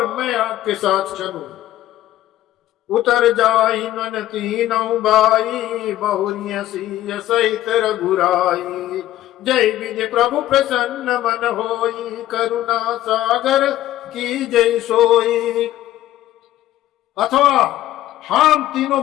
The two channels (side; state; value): right; quieter; 13.9 dB